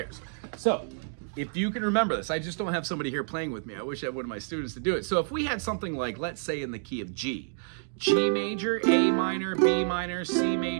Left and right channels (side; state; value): left; silent; digital silence